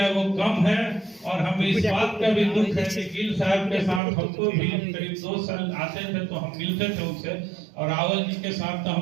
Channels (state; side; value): drops out; left; at 4.0 s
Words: वो कम है। और हमें इस बात का भी दुख है कि गिल साहब के साथ हमको भी करीब 2 साल आते थे तो हम मिलते थे उनसे, और रावल जी के साथ तो